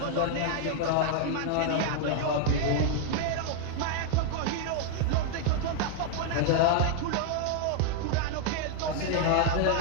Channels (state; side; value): different; both; correlation 0.00